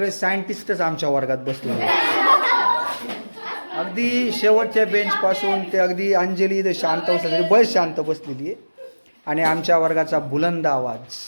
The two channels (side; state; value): both; inverted; correlation -1.00